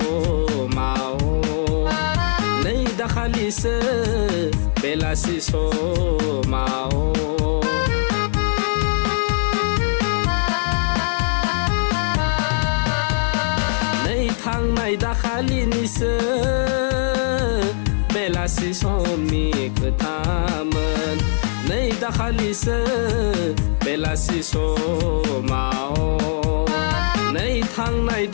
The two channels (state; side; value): silent; right; digital silence